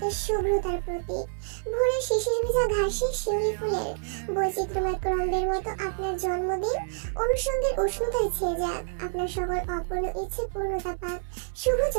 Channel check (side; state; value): left; silent; 56 dB below the other